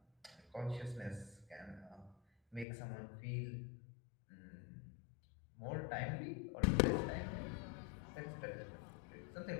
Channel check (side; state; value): right; drops out; at 2.7 s